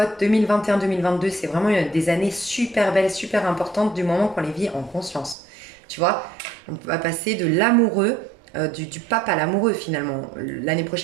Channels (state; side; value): drops out; left; at 5.4 s